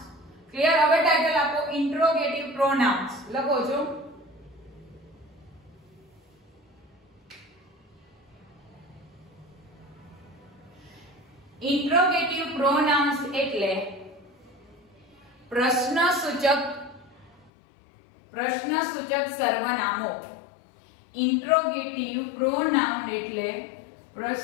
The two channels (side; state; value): right; drops out; at 17.5 s